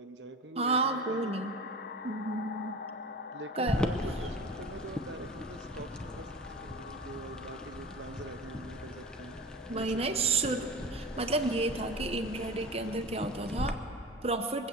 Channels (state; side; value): normal; both; correlation 0.35